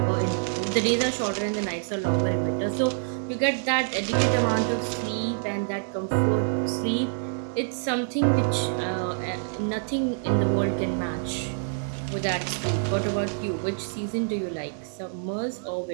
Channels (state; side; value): silent; left; digital silence